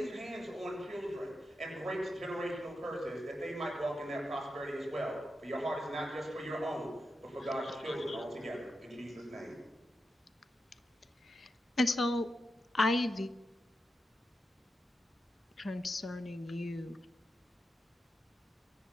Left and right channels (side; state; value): both; normal; correlation 0.88